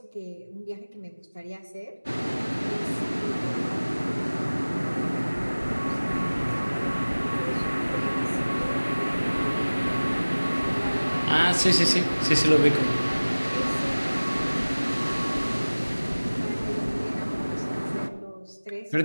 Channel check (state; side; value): inverted; both; correlation -1.00